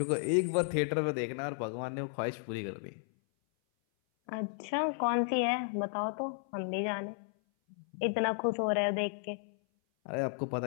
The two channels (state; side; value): silent; right; 55 dB below the other